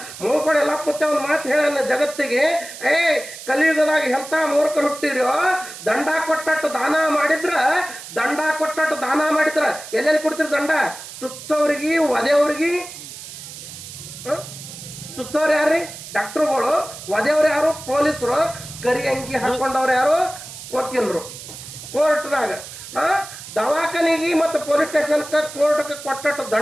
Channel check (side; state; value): right; noise; hiss, 13 dB below the sound